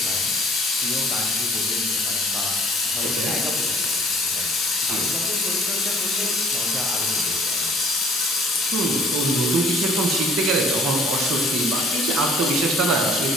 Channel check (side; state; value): both; normal; correlation 0.55